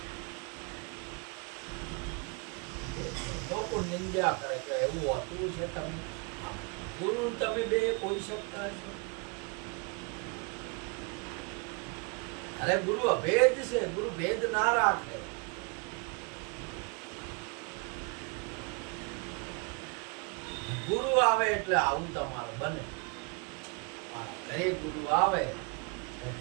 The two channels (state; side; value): quieter; left; 32.5 dB